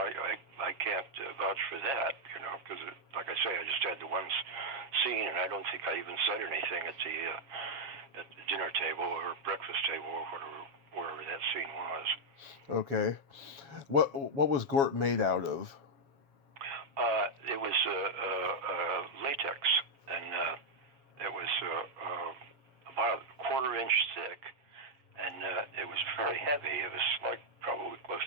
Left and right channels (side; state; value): left; late; 7.3 ms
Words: can't vouch for that, because like I say, I just had the one scene, and I don't think I even said anything at the dinner table or breakfast table or wherever that scene was. Okay. What was Gort made out of? It was latex, and it was about a quarter-inch thick, and it was very heavy. It was like probably close